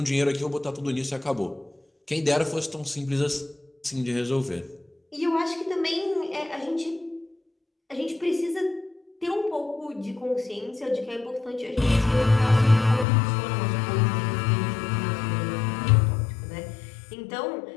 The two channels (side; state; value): right; drops out; at 13.1 s